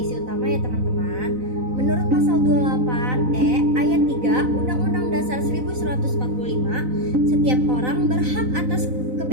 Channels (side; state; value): left; late; 4.0 ms